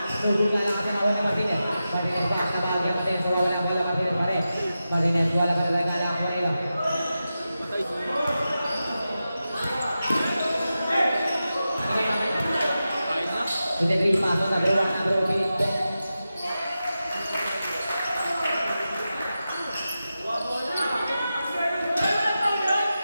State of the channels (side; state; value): both; inverted; correlation -0.92